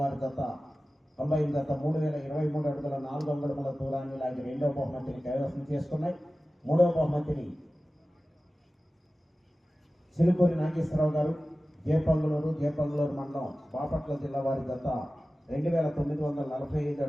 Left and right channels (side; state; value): both; normal; correlation 0.96